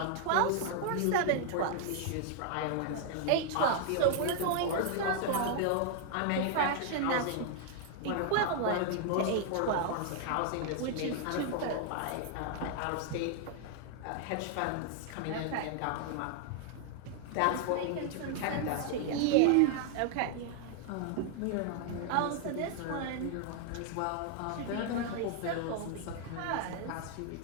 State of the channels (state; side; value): different; both; correlation 0.00